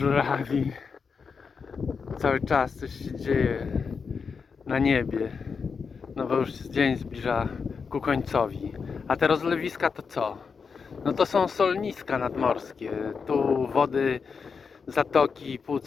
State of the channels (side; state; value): right; quieter; 5.5 dB